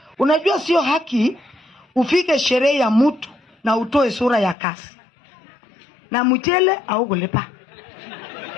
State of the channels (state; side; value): drops out; right; at 4.5 s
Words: Unajua sio haki ufike sherehe ya mtu na utoe sura ya kasi. Na mchele au kulipa.